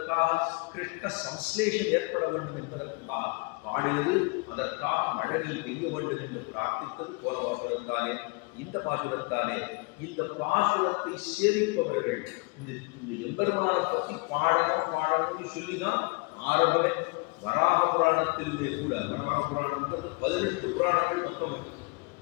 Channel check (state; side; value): quieter; right; 29.5 dB